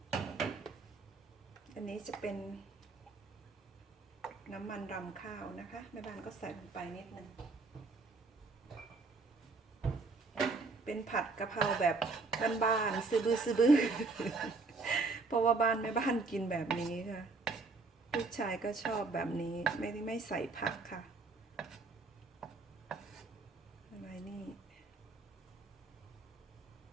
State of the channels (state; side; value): quieter; left; 3.9 dB